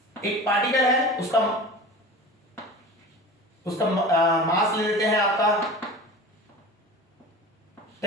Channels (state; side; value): normal; both; correlation 0.35